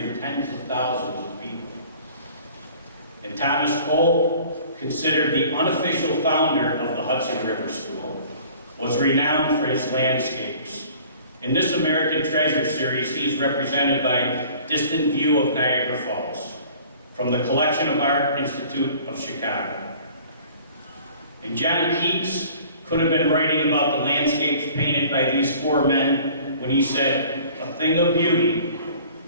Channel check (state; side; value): inverted; both; correlation -0.49